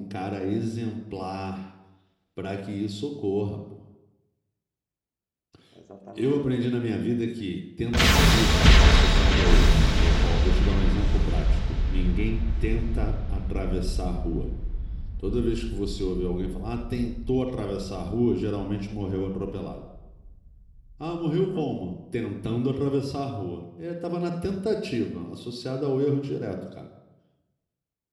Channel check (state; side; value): identical; both; correlation 1.00